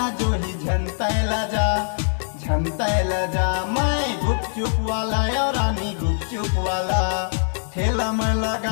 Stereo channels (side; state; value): right; silent; digital silence